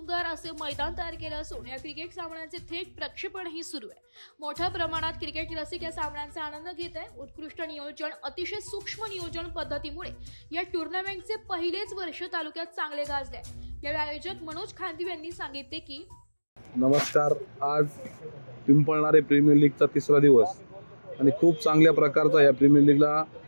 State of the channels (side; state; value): both; inverted; correlation -1.00